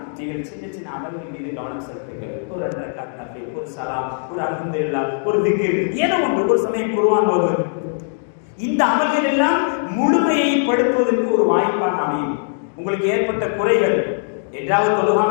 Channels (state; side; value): silent; right; digital silence